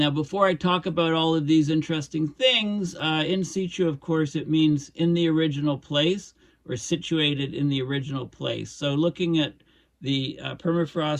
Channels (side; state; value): both; identical; correlation 1.00